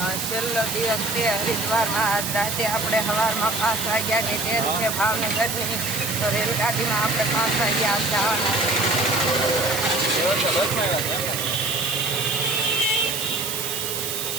છેલ્લો દિવસ છે હરિદ્વારમાં. આજ રાતે આપણે સવારમાં 5 વાગ્યાની ટ્રેન છે ભાવનગરની, તો રેલગાડીમાં આપણે 5 વાગ્યા જવાના છે.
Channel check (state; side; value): noise; right; hiss, 3 dB below the sound